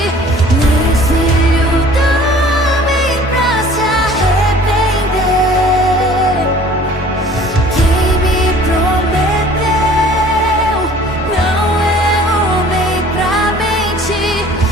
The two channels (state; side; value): normal; both; correlation 0.50